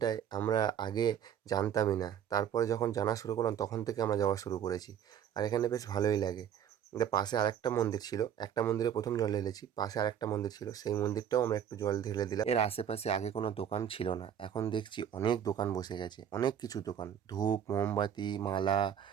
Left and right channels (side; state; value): left; quieter; 9.2 dB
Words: আমরা আগে জানতামই না, তারপরে যখন জানা শুরু করলাম তখন থেকে আমরা যাওয়া শুরু করেছি। আর এখানে বেশ ভালোই লাগে। পাশে আরেকটা মন্দির ছিল, একটা মন্দিরে প্রথম জল ঢেলেছি, পাশে আরেকটা মন্দির ছিল, সেই মন্দিরটাও আমরা একটু জল ঢেলে দিলাম। এর আশেপাশে আগে কোনো দোকান ছিল না, এখন দেখছি অনেক দোকান বসে গেছে, অনেক কিছু দোকান, ধূপ, মোমবাতি, মালা,